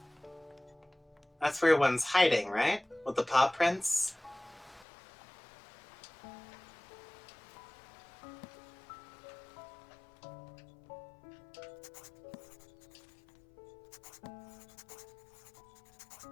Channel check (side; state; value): right; drops out; at 4.9 s